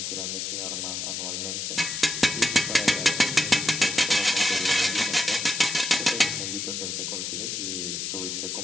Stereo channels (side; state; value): left; noise; hiss, 3 dB below the sound